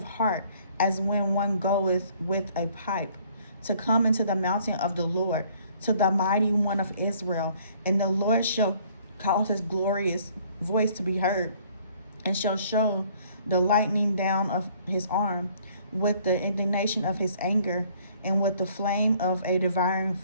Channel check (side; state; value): both; inverted; correlation -0.60